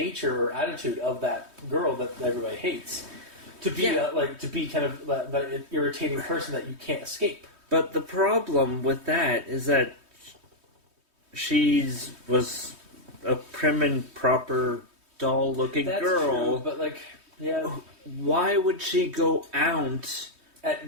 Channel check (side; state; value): left; late; 3.2 ms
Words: or attitude of that girl that everybody hates. To be to be kind of that irritating person that you can't escape. But the problem with that is that was a prim and proper doll-looking That's girl. true, but yeah, Why would she go out at